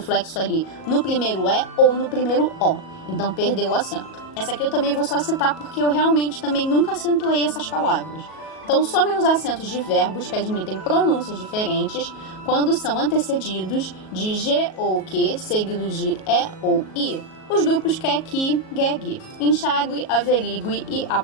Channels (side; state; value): right; late; 37 ms